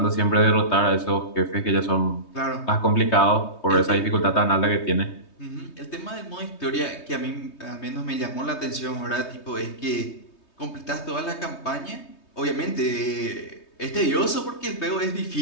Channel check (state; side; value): late; right; 3.2 ms